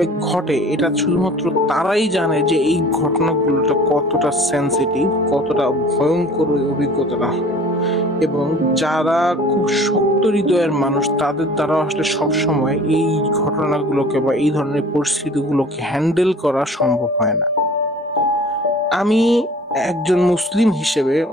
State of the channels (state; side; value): normal; both; correlation 0.46